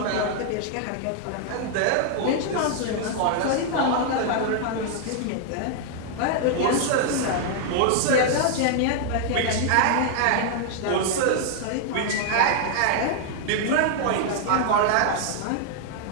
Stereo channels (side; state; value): both; different; correlation 0.00